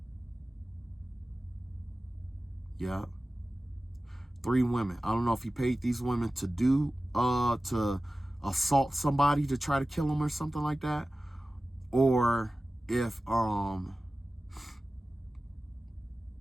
Yeah. 3 women. I don't know if he paid these women to to assault somebody to try to kill him or something like that, or if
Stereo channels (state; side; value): normal; both; correlation 0.96